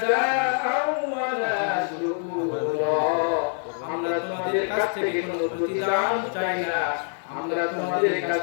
ওয়ালা শুকুরা। আমরা তোমাদের কাছ থেকে কোনো প্রতিদান চাই না, আমরা তোমাদের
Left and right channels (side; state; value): right; silent; 62 dB below the other